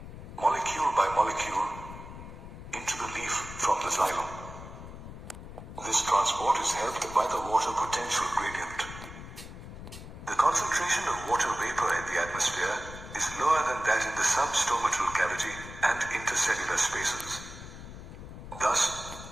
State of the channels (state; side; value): noise; left; rumble, 12 dB below the sound